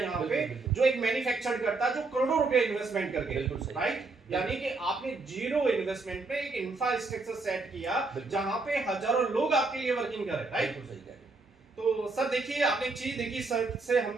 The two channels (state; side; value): quieter; left; 3.6 dB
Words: पे, जो एक मैन्युफैक्चर करता है, जो करोड़ों रुपए इन्वेस्टमेंट करके, राइट? यानी कि आपने जीरो इन्वेस्टमेंट में एक इंफ्रास्ट्रक्चर सेट किया जहां पे हजारों लोग आपके लिए वर्किंग कर रहे हैं, राइट? तो सर देखिए, आपने एक चीज देखी, सर से